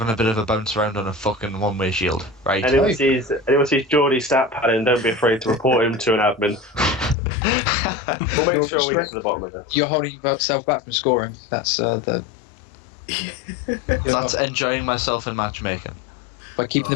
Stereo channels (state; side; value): drops out; right; at 7.2 s